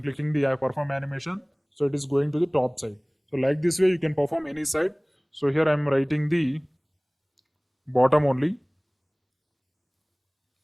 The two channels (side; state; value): both; identical; correlation 1.00